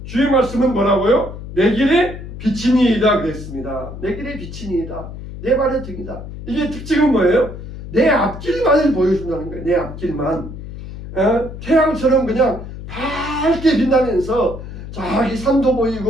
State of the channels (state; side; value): noise; left; hum, 11 dB below the sound